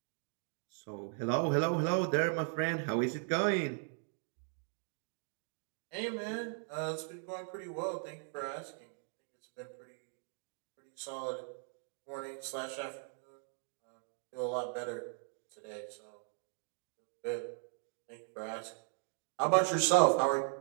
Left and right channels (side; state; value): left; silent; 52 dB below the other